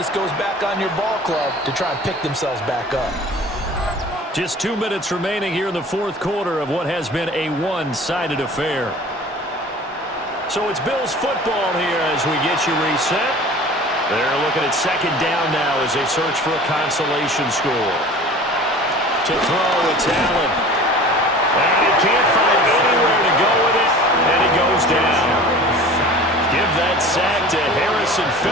goes back on your ball club to try and pick themselves back up. Just 2 minutes remaining here in the 4th quarter of what has been a one-sided affair. So it's Bills football here as we get you reset. They're looking at 2nd down now as they search for a consolation score. To throw, it's Allen. And he can't find anywhere to go with it, and he goes down. Give that sack to Harrison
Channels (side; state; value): both; normal; correlation 0.42